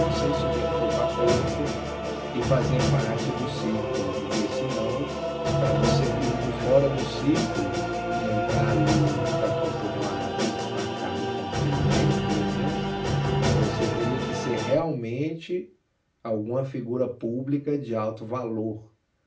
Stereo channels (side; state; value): both; identical; correlation 1.00